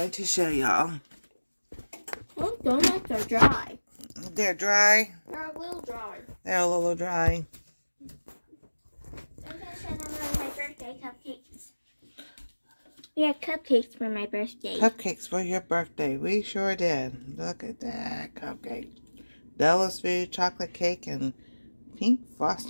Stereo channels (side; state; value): both; inverted; correlation -1.00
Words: to show y'all. Oh, donuts are dry. They're dry. They're a little dry. They're a little dry. I'm going to show them one of my birthday cupcakes. We had cupcakes for my birthday. Cupcakes for your birthday. We sure did. Look at that cupcake. Della's food, chocolate cake, and pink